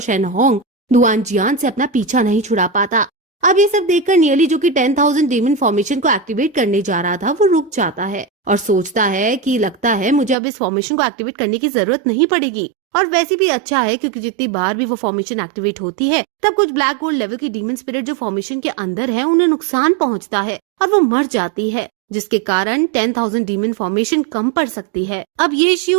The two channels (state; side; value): drops out; left; at 10.4 s